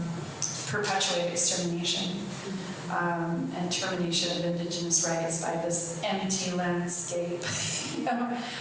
perpetuate extermination and termination of Indigenous rights by this empty landscape,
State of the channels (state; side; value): identical; both; correlation 1.00